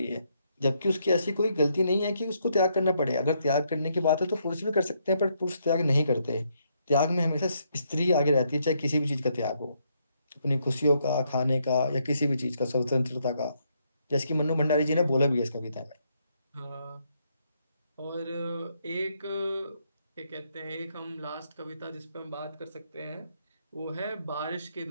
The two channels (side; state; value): both; inverted; correlation -0.75